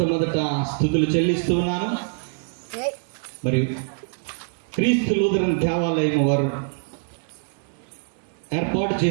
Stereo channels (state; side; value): silent; left; digital silence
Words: స్తుతులు చెల్లిస్తూ ఉన్నాను. మరి క్రీస్తు లూథరన్ దేవాలయం వారు ఏర్పాటు